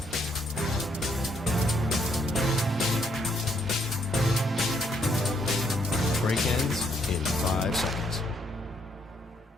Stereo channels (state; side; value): normal; both; correlation 0.71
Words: Break ends in 5 seconds.